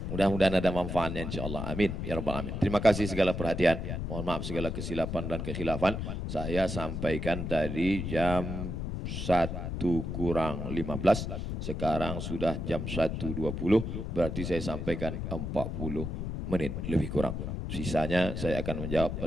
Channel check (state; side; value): noise; left; rumble, 4 dB below the sound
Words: Mudah-mudahan ada manfaatnya insyaAllah. Amin. Ya Rabbal Alamin. Terima kasih segala perhatian. Mohon maaf segala kesilapan dan kekhilafan. Saya sampaikan tadi jam 1 kurang 15. Sekarang sudah jam 1.20. Berarti saya sampaikan 40 menit lebih kurang. Sisanya saya akan menjawab